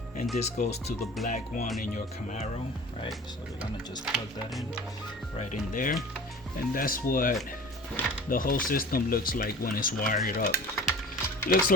and this goes to the black one in your Camaro, right? So we're gonna just plug that in right in there, and that's what the whole system looks like when it's wired up. Looks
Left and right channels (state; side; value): normal; both; correlation 0.41